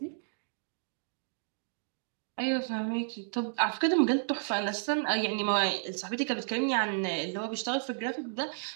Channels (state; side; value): silent; left; digital silence